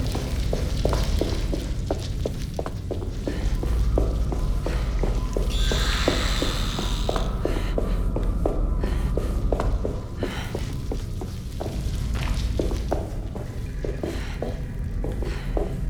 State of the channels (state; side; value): identical; both; correlation 1.00